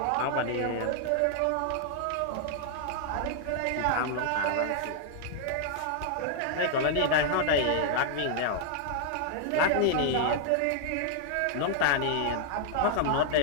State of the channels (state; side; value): different; both; correlation -0.01